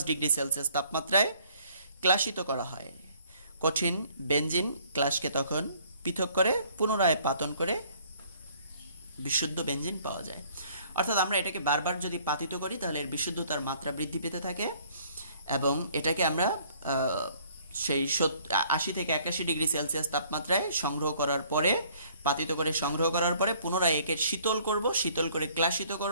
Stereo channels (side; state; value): both; inverted; correlation -0.60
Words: ডিগ্রি সেলসিয়াস তাপমাত্রায় ক্লাসিত করা হয়। কঠিন বেনজিন ক্লাসকে তখন পৃথক করে পুনরায় পাতন করে বিশুদ্ধ বেনজিন পাওয়া যায়। অর্থাৎ আমরা এটাকে বারবার যদি পাতিত করি তাহলে এর বিশুদ্ধতার মাত্রা বৃদ্ধি পেতে থাকে এবং এটাকে আমরা সেই 80 থেকে 81 ডিগ্রি সেলসিয়াস তাপমাত্রায় সংগ্রহ করার পরে, পাতিত করে সংগ্রহ করার পরে পুনরায় একে শীতল করব, শীতল করে ক্লাসিত